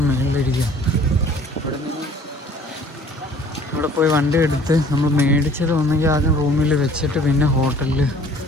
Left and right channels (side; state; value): both; normal; correlation 0.53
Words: മേളിലിരിക്കുക. ഇവിടെ പോയി വണ്ടി എടുത്ത് നമ്മൾ മേടിച്ചത് ഒന്നെങ്കിൽ ആദ്യം റൂമിൽ വെച്ചിട്ട് പിന്നെ ഹോട്ടലിൽ